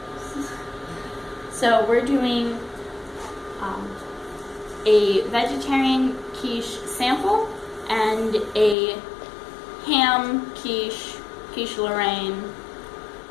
So we're doing a vegetarian quiche sample and a ham quiche Lorraine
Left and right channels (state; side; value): drops out; right; at 8.8 s